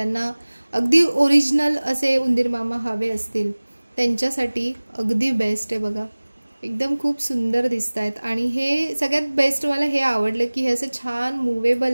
अगदी ओरिजिनल असे उंदीर मामा हवे असतील त्यांच्यासाठी अगदी बेस्ट आहे बघा, एकदम खूप सुंदर दिसत आहेत। आणि हे सगळ्यात बेस्ट मला हे आवडलं की हे असं छान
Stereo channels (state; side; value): inverted; both; correlation -1.00